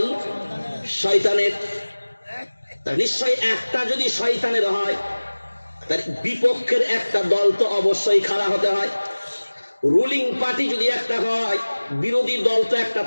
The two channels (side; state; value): both; inverted; correlation -1.00